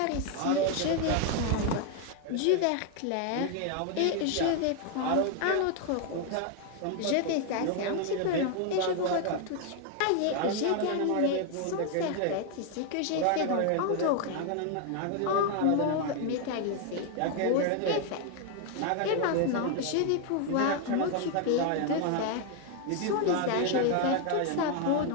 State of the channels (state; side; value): different; both; correlation 0.01